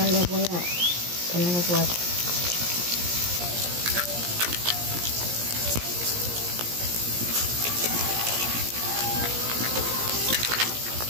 le voy a poner el huevo.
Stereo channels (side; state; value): left; late; 17 ms